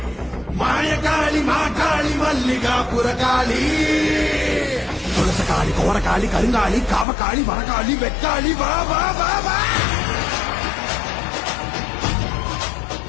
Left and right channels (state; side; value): drops out; right; at 7.1 s